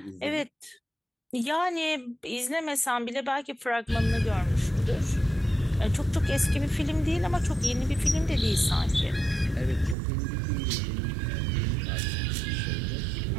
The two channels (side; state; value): left; drops out; at 10.0 s